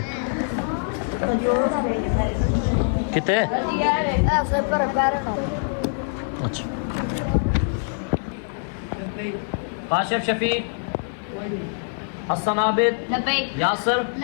कितने अच्छा काशिफ शफीक हसन आबिद यासर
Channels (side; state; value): right; silent; digital silence